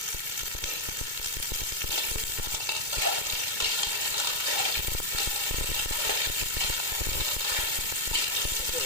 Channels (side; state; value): left; late; 2.2 ms